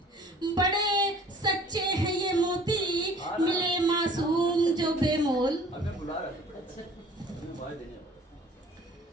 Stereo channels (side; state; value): both; normal; correlation 0.50